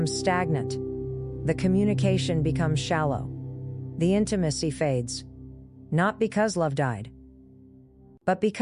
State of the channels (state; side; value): identical; both; correlation 1.00